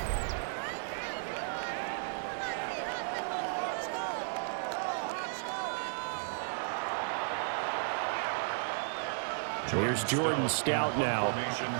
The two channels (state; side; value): silent; left; digital silence